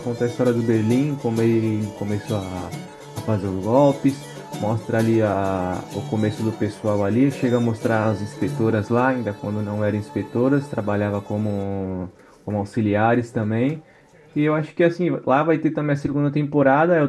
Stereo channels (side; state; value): both; identical; correlation 1.00